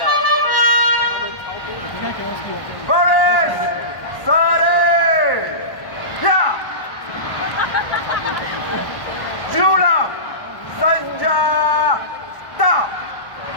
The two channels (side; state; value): right; late; 1.1 ms